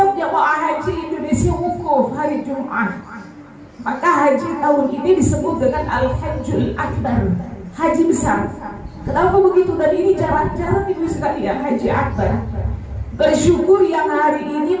jemaah haji Indonesia wukuf hari Jumat. Maka haji tahun ini disebut dengan Al-Hajjul Akbar, haji besar. Kenapa begitu? Dan ini jarang-jarang ibu sekalian haji akbar. Bersyukur yang hari ini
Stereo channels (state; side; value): identical; both; correlation 1.00